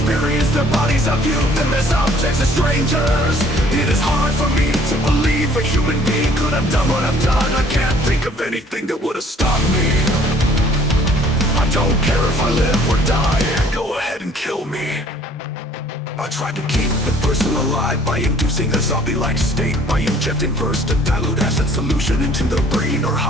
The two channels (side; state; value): both; normal; correlation 0.57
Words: their bodies. I viewed them as objects, as strangers. It is hard for me to believe a human being could have done what I've done. I can't think of anything that would have stopped me. I don't care if I live or die, go ahead and kill me. I tried to keep the person alive by inducing a zombie-like state, by injecting bursts of dilute acid solution into their brain or